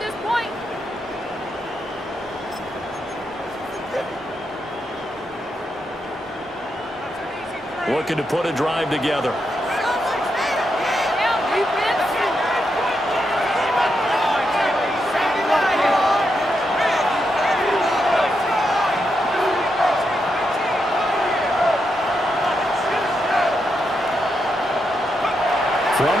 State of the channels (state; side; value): normal; both; correlation 0.83